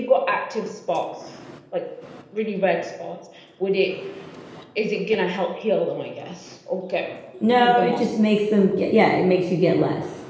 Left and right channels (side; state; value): both; identical; correlation 1.00